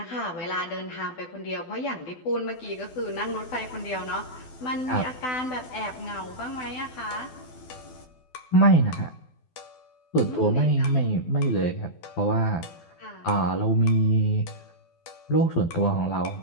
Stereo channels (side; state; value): right; late; 12 ms